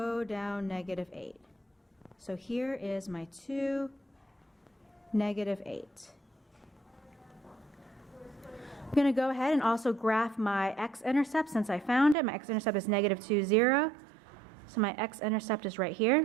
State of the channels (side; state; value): left; drops out; at 12.2 s